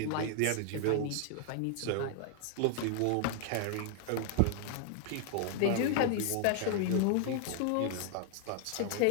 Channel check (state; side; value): different; both; correlation 0.00